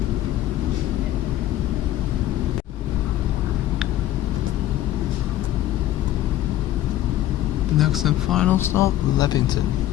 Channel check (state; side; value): quieter; right; 13.6 dB